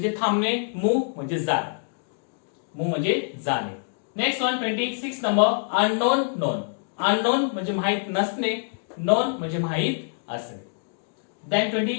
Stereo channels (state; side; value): silent; right; digital silence